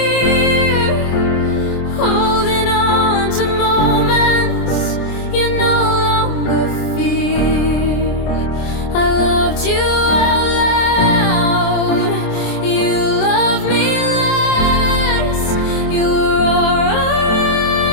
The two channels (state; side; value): late; right; 26 ms